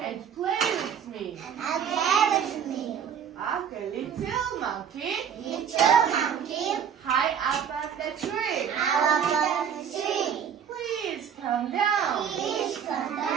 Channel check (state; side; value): quieter; left; 8.0 dB